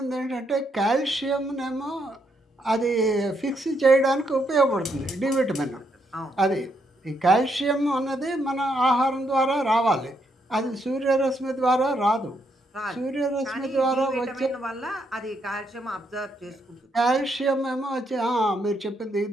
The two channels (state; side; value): normal; both; correlation 0.76